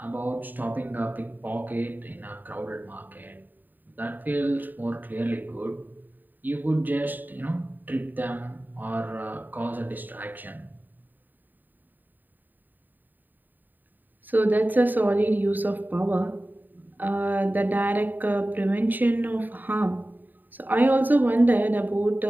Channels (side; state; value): left; late; 0.089 ms